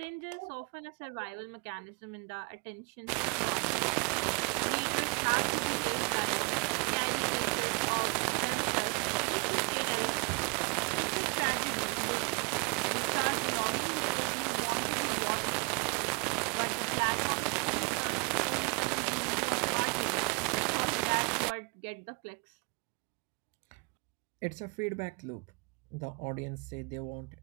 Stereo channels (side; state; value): left; quieter; 32.8 dB